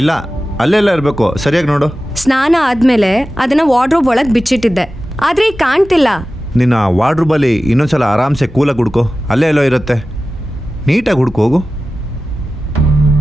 ಅಲ್ಲೆಲ್ಲ ಇರಬೇಕು. ಸರಿಯಾಗಿ ನೋಡು. ಸ್ನಾನ ಆದ್ಮೇಲೆ ಅದನ್ನ ವಾರ್ಡ್ರೋಬ್ ಒಳಗೆ ಬಿಚ್ಚಿಟ್ಟಿದ್ದೆ, ಆದ್ರೆ ಈಗ ಕಾಣ್ತಿಲ್ಲ. ನಿನ್ನ ವಾರ್ಡ್ರೂಬಲ್ಲಿ ಇನ್ನೊಂದ್ಸಲ ಆರಾಮ್ಸೆ ಕೂಲಾಗಿ ಹುಡ್ಕೋ. ಅಲ್ಲೇ ಎಲ್ಲೋ ಇರುತ್ತೆ, ನೀಟಾಗಿ ಹುಡ್ಕೋ ಹೋಗು.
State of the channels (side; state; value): both; normal; correlation 0.95